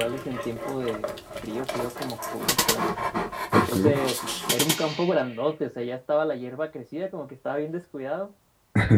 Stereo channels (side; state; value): both; identical; correlation 1.00